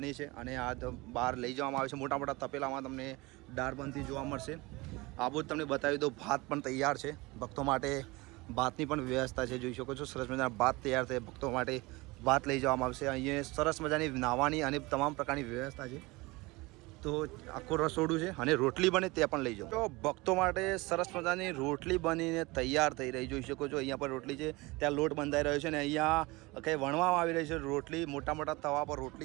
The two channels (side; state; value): left; quieter; 23.1 dB